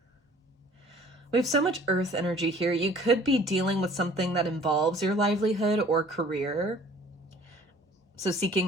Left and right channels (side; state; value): both; normal; correlation 0.52